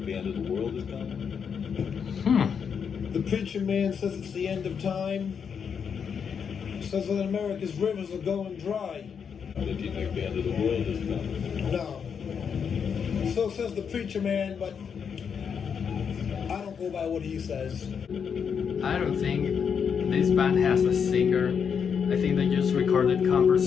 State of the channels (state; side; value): quieter; right; 6.9 dB